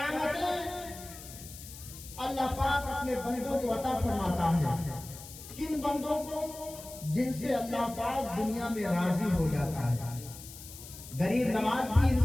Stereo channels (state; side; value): noise; left; hiss, 15 dB below the sound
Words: اللہ پاک اپنے بندوں کو عطا فرماتا ہے۔ کن بندوں کو؟ جن سے اللہ پاک دنیا میں راضی ہو جاتا ہے۔ غریب نواز بھی